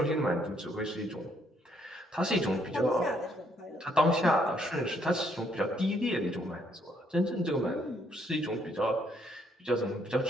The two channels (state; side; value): normal; both; correlation 0.70